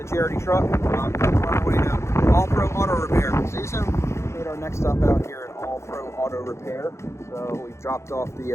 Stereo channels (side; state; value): right; late; 0.13 ms